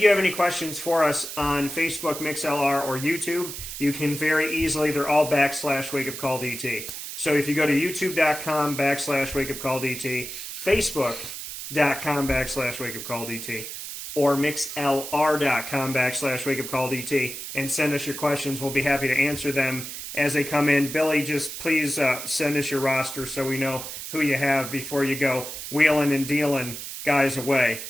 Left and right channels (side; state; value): right; noise; hiss, 8 dB below the sound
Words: you have any questions for us on Facebook, MixLR, or YouTube, you can very easily, they're all /WakeUpCallDT. So if you go to youtube.com /WakeUpCallDT, facebook.com /WakeUpCallDT, or mixlr.com /WakeUpCallDT, and send us your questions, we'll be happy to answer them as they come in. Billy, just please send us your roster so we know who you have before you go wheeling and dealing guys away.